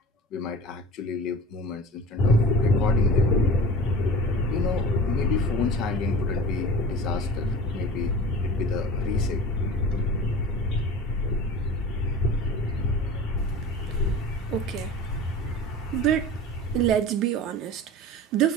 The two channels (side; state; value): both; normal; correlation 0.37